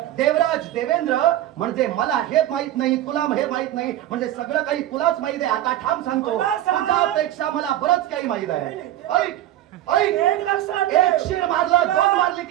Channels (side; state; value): left; quieter; 13.2 dB